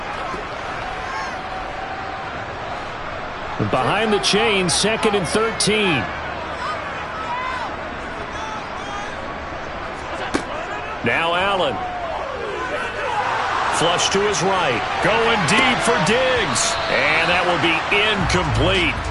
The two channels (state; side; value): identical; both; correlation 1.00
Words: Behind the chain, 2nd and 13. Now Allen. Flush to his right. Going deep for Diggs. And that will be incomplete.